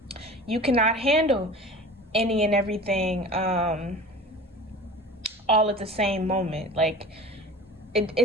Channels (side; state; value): both; normal; correlation 0.37